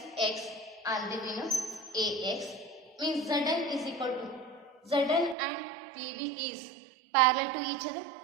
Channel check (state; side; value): drops out; left; at 5.4 s